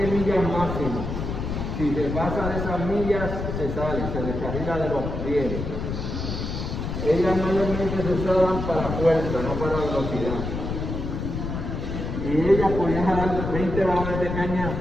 millas máximo. Si se pasa de esas millas, se sale, se descarrila de los rieles. Ellas mayormente se usaban para fuerza, no para velocidad. Y ellas podían jalar 20 vagones de caña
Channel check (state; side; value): noise; left; rumble, 4 dB below the sound